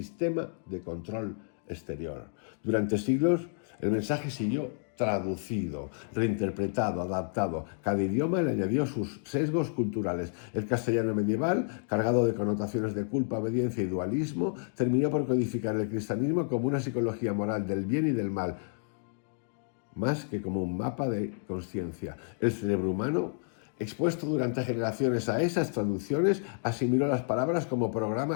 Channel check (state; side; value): silent; right; digital silence